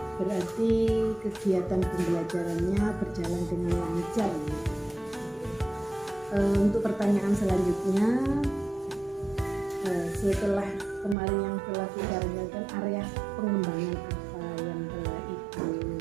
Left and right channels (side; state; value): left; drops out; at 11.2 s